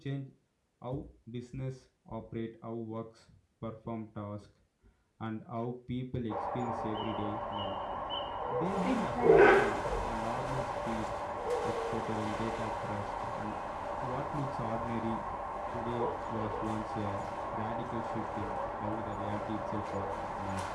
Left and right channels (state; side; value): identical; both; correlation 1.00